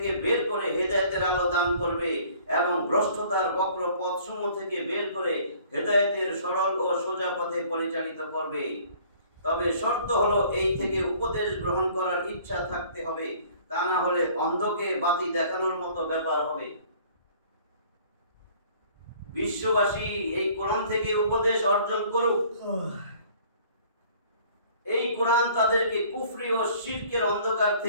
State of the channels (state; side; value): inverted; both; correlation -0.54